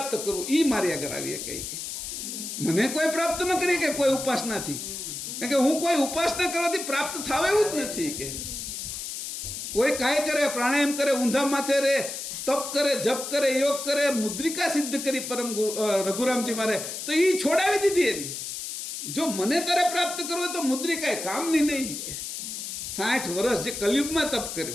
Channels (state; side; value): noise; left; hiss, 6 dB below the sound